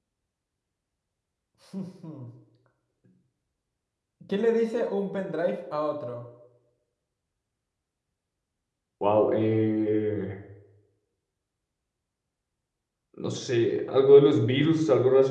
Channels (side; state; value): both; identical; correlation 1.00